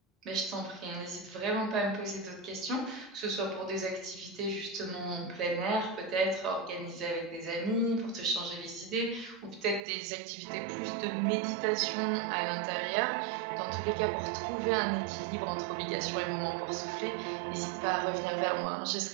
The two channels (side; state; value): left; drops out; at 9.8 s